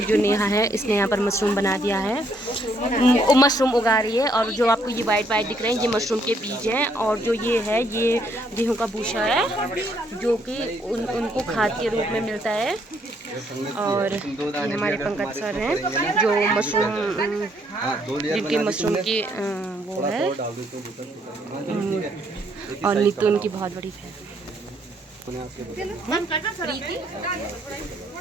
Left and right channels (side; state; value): both; normal; correlation 0.70